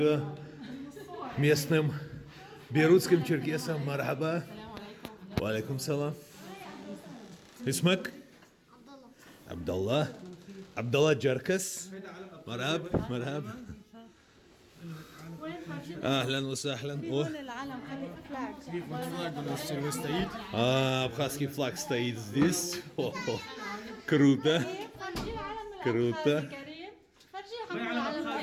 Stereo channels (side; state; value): both; identical; correlation 1.00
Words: местным бейрутским черкесам. Мархаба. Валейкум салам. Исмак? Абдалла. Абдалла Джаркас. Мархаб. Мархаб. اهلا وسهلا. Абхазский флаг стоит здесь. Круто. Круто.